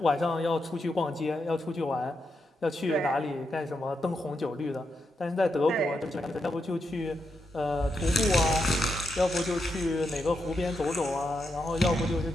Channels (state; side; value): normal; both; correlation 0.84